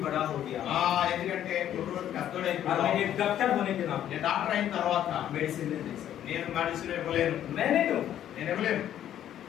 बड़ा हो गया ఎందుకంటే కుర్రోడు और मैं పెద్దోడైపోయాడు. एक डॉक्टर होने के नाते నేను డాక్టర్ అయిన తర్వాత मेडिसिन नहीं दे सकता నేను మెడిసిన్ ఇవ్వలేను. मैं नहीं दूंगा నేను ఇవ్వలేను.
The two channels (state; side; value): quieter; right; 11.0 dB